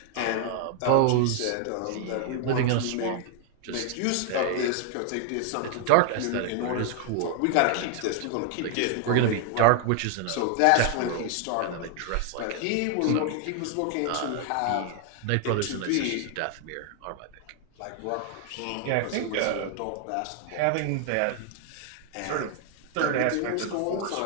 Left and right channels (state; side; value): different; both; correlation 0.00